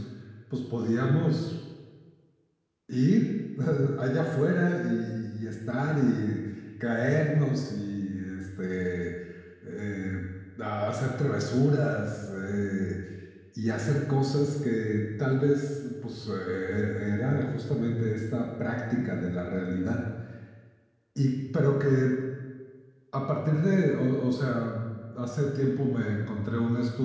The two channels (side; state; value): both; identical; correlation 1.00